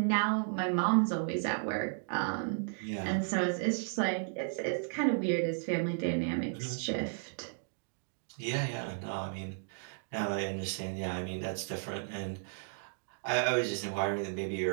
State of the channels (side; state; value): left; silent; digital silence